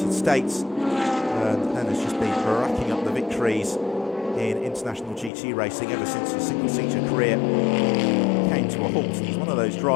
States, and then has just been racking up the victories in international GT racing ever since his single-seater career came to a halt. And he's one of those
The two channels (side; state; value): right; drops out; at 5.3 s